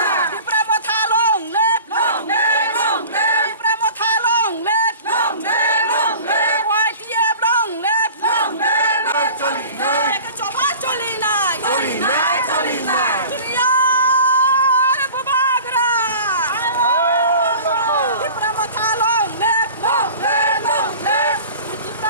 दिप्रा मथा लं लेप दिप्रा मथा लं लेप वाइटिएब लं लेप एक चबा चली नाय दुनियार बुबा गर दिप्रा मथा लं लेप दिप्रा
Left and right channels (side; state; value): both; inverted; correlation -0.41